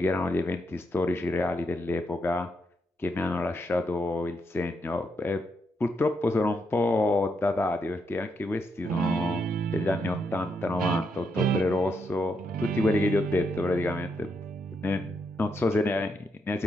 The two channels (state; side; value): normal; both; correlation 0.80